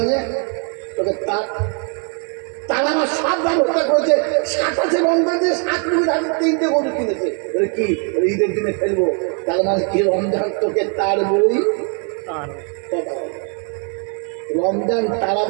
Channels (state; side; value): quieter; left; 39.9 dB